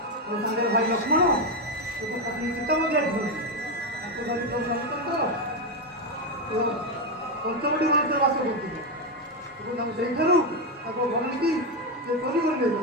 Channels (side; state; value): both; normal; correlation 0.07